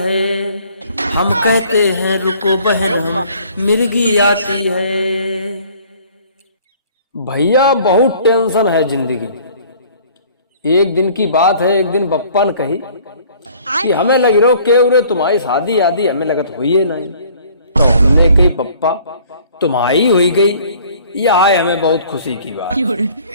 हम कहते हैं रुको बहन हम मिर्गी आती है। भैया बहुत टेंशन है जिंदगी। एक दिन की बात है, एक दिन बप्पा ने कही कि हमें लग रहा के उरे तुम्हारी शादी आदि हमें लगत हुई है नहीं। तो हमने कही पप्पा तुम्हारी हुई गई, यह है हमें बहुत खुशी की बात।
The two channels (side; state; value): both; inverted; correlation -0.54